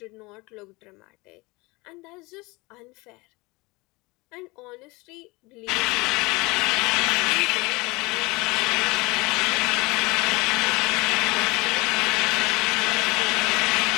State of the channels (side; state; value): right; quieter; 24.1 dB